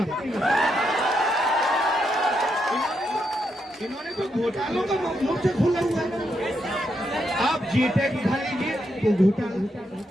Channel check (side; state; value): both; normal; correlation 0.81